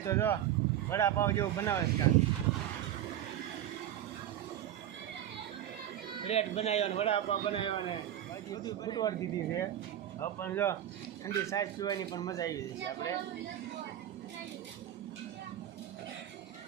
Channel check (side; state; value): left; quieter; 11.6 dB